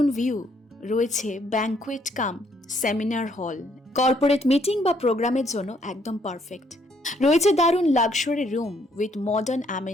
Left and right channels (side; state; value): both; normal; correlation 0.69